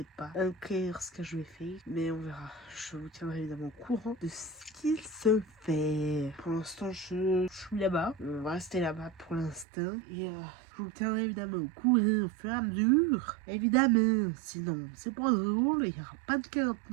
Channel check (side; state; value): left; drops out; at 9.7 s